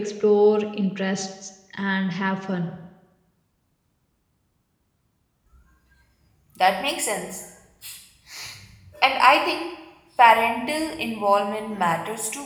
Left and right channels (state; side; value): identical; both; correlation 1.00